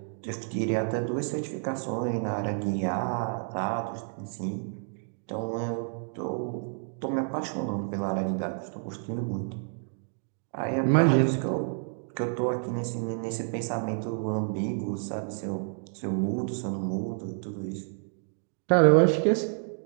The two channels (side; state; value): left; silent; 58 dB below the other